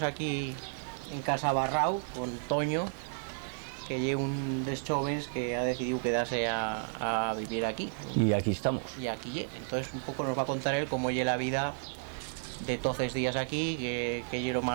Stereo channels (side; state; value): left; silent; 56 dB below the other